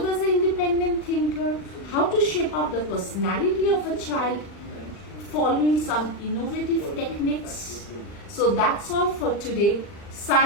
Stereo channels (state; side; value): late; right; 40 ms